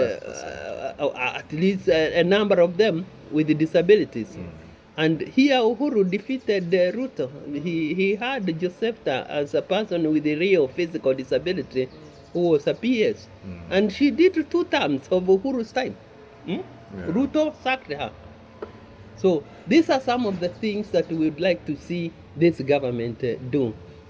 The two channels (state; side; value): identical; both; correlation 1.00